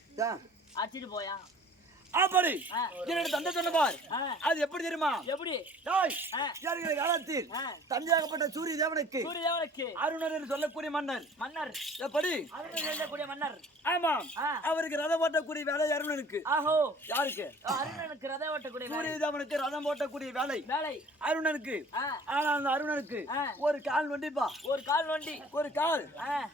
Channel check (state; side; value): normal; both; correlation 0.49